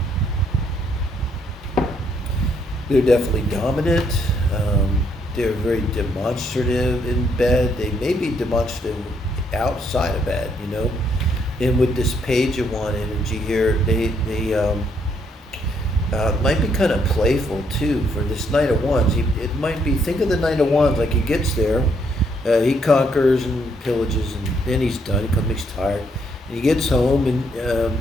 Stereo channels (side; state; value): both; normal; correlation 0.72